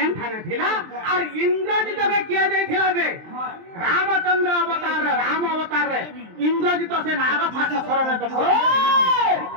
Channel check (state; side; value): late; left; 23 ms